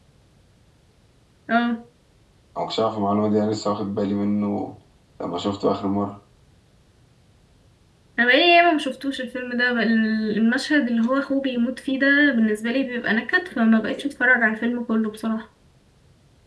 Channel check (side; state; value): both; identical; correlation 1.00